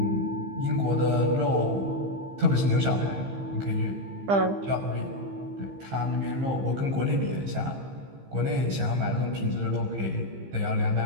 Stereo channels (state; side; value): late; left; 15 ms